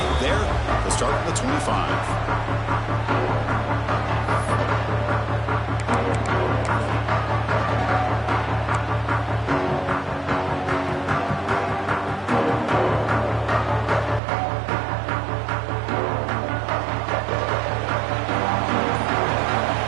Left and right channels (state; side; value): drops out; left; at 14.2 s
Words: there to start at the 25.